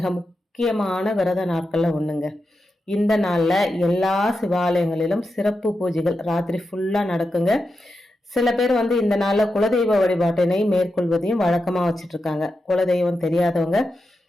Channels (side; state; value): both; normal; correlation 0.89